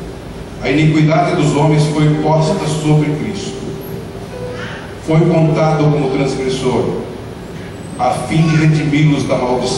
a iniquidade dos homens foi posta sobre Cristo. Foi contado como transgressor, a fim de redimi-los da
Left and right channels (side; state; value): both; identical; correlation 1.00